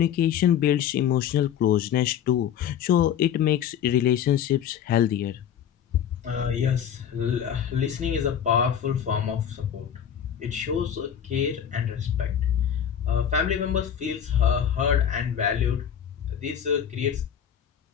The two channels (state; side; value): quieter; right; 9.1 dB